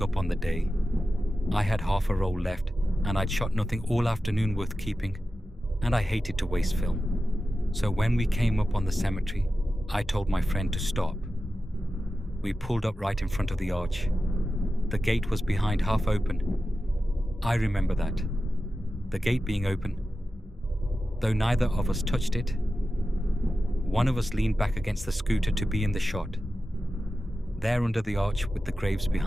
up on the day. I had half a roll left and I'd shot nothing all afternoon worth keeping, and I hated to waste film. So when we came up on the cemetery, I told my friend to stop. We pulled up right in front of the arch. The gate was behind, half open. I remember that. The gate being open. Though neither of us touched it, one of us leaned back against the scooter to be in the shot, there under the arch with the graves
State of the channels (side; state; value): both; normal; correlation 0.93